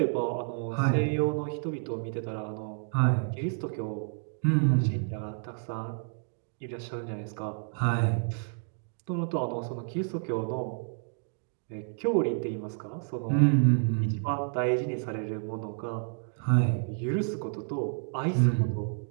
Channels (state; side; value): silent; left; digital silence